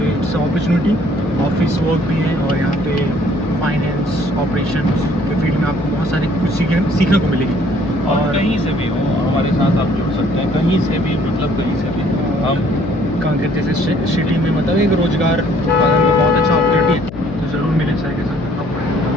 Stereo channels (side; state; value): left; noise; hum, 13 dB below the sound